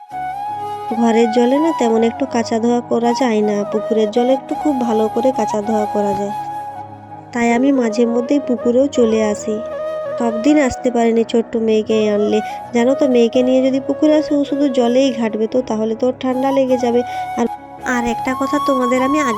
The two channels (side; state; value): both; identical; correlation 1.00